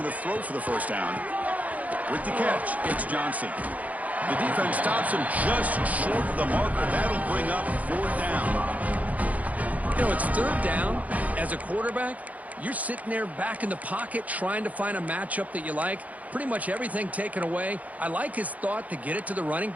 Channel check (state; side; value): late; left; 0.073 ms